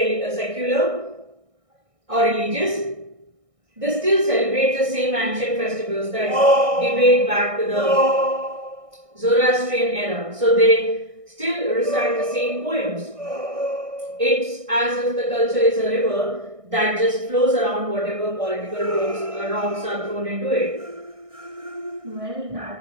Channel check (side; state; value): left; late; 1.6 ms